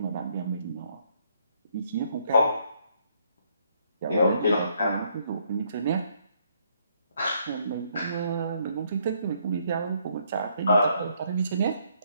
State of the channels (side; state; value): both; inverted; correlation -0.70